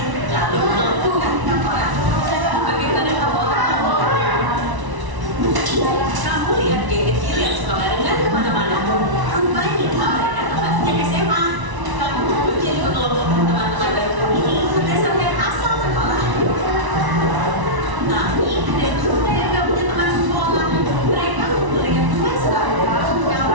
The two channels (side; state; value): left; late; 1.0 ms